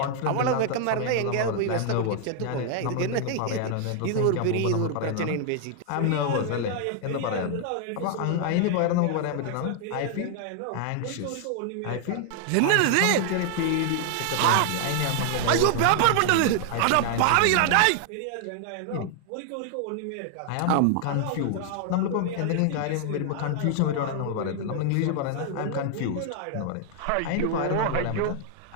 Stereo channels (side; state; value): both; different; correlation 0.00